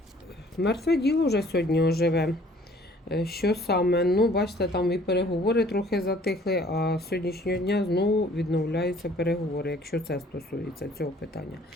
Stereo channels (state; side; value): normal; both; correlation 0.56